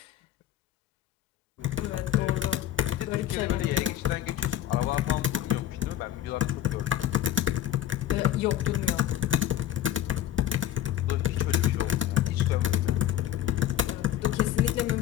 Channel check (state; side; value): quieter; right; 11.5 dB